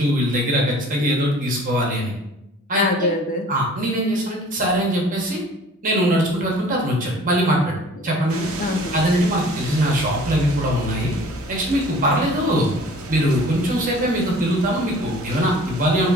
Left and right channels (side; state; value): both; normal; correlation 0.48